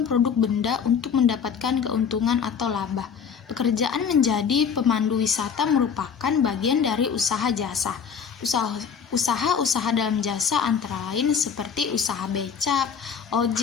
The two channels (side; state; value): right; quieter; 6.8 dB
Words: produk benda untuk mendapatkan keuntungan atau laba. Pekerjaan menjadi pemandu wisata merupakan bagian dari usaha jasa. Usaha dalam jasa antara lain seperti usaha becak,